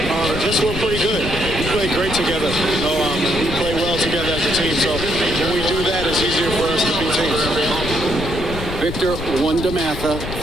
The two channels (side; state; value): left; noise; rumble, 7 dB below the sound